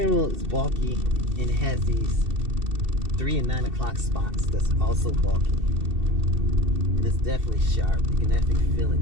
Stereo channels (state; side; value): late; left; 2.7 ms